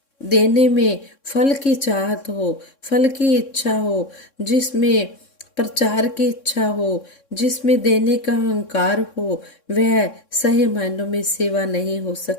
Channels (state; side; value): late; right; 3.6 ms